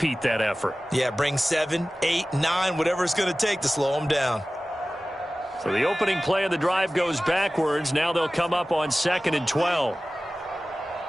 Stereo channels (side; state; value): both; normal; correlation 0.97